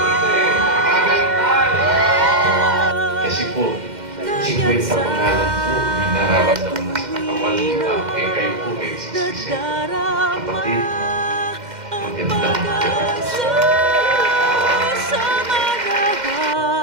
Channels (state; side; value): late; left; 2.1 ms